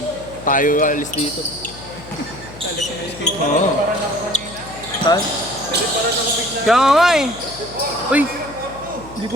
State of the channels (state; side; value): noise; left; hum, 17 dB below the sound